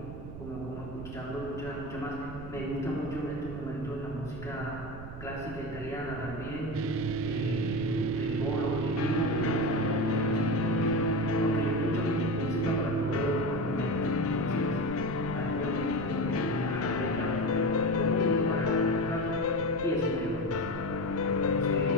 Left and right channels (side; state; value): right; noise; rumble, 11 dB below the sound